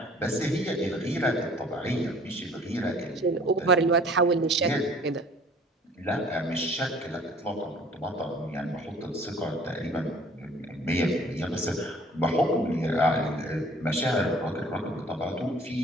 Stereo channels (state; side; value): normal; both; correlation 0.53